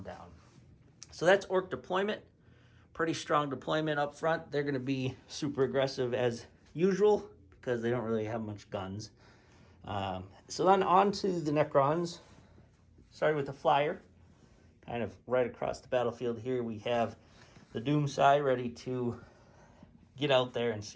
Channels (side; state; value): both; identical; correlation 1.00